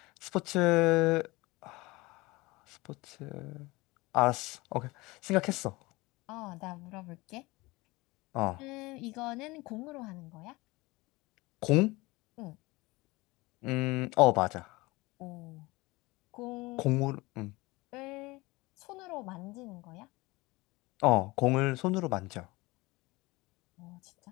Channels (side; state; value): right; quieter; 22.4 dB